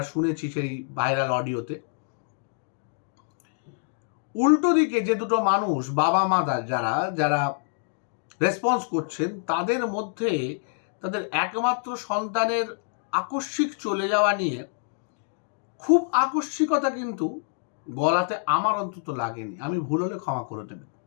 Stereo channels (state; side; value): silent; right; digital silence